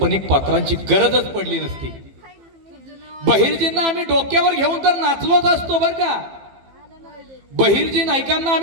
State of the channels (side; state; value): left; late; 15 ms